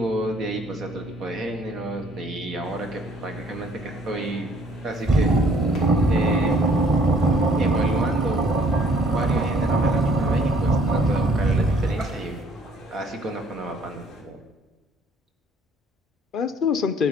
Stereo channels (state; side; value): normal; both; correlation 0.60